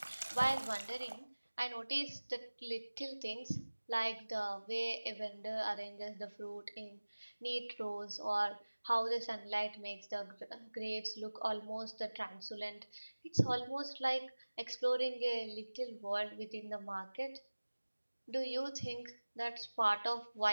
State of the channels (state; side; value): inverted; both; correlation -1.00